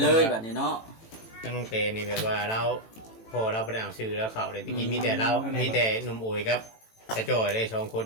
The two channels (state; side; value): late; right; 18 ms